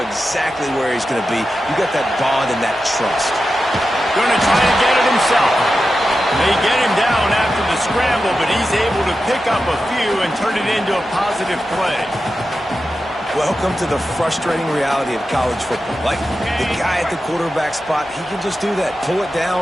exactly where he's going to be. You got that bond and that trust. Going to try and get it himself. They get him down after the scramble, but he's able to pick up a few and turn it into a positive play. Welcome to the frustrating reality of college football. Like, the guy at the quarterback spot, he can just do that. Pull it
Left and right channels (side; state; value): both; normal; correlation 0.91